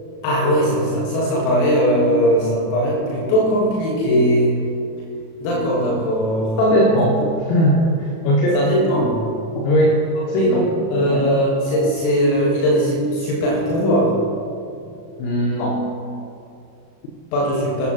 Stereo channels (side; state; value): right; late; 36 ms